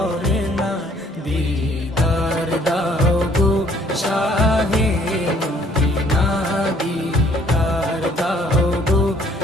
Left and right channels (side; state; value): both; normal; correlation 0.61